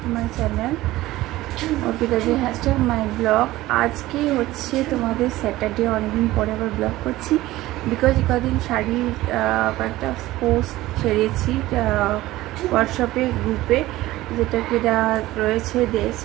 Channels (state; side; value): quieter; left; 17.0 dB